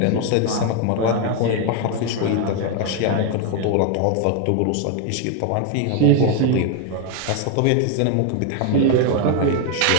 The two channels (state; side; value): different; both; correlation 0.01